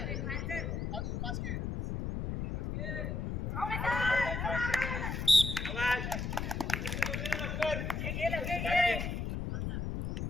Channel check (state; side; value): noise; left; rumble, 2 dB below the sound